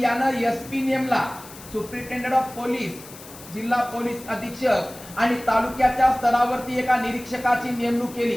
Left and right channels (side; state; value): left; noise; hiss, 17 dB below the sound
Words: यानं एसपी नेमला, सुप्रिंटेंडेंट ऑफ पोलीस, जिल्हा पोलीस अधीक्षक. आणि तालुक्याच्या स्तरावरती एका निरीक्षकाची नेमणूक